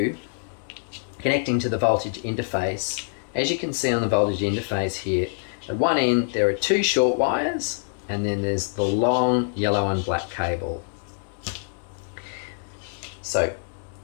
connecting to the voltage interface, as you can see on the voltage interface here, at one end there are two short wires and then there's the long yellow and black cable. So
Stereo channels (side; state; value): right; silent; digital silence